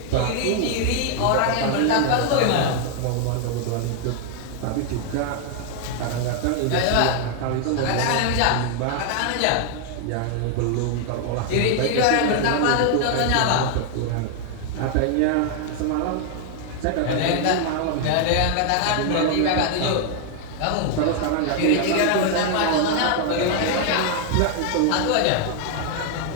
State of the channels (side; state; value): both; different; correlation 0.00